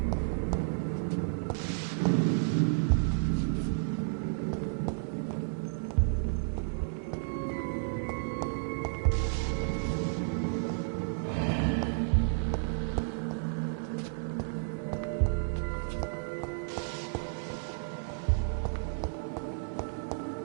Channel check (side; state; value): left; silent; digital silence